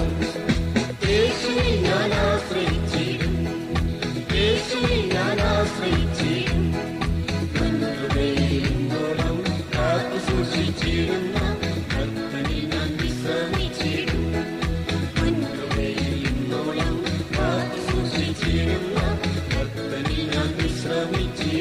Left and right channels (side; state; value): both; identical; correlation 1.00